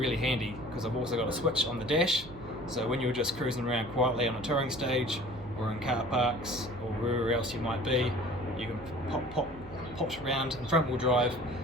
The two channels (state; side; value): noise; right; hum, 16 dB below the sound